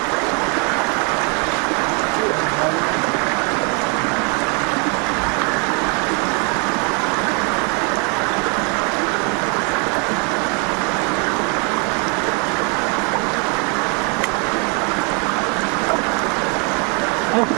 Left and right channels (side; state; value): left; quieter; 35.2 dB